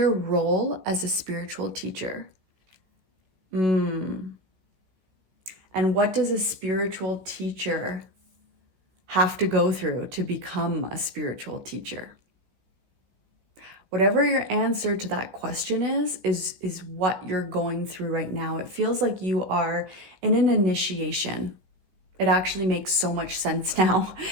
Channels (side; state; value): left; late; 16 ms